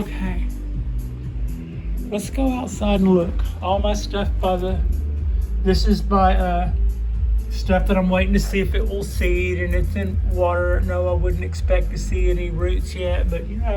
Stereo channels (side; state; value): both; identical; correlation 1.00